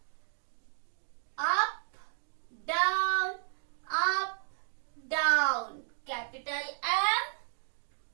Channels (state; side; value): silent; left; digital silence